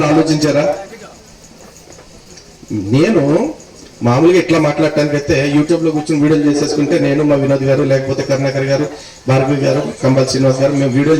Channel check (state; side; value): identical; both; correlation 1.00